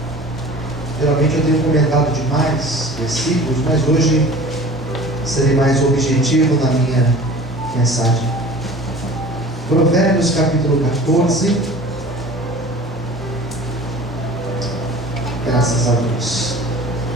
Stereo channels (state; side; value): normal; both; correlation 0.43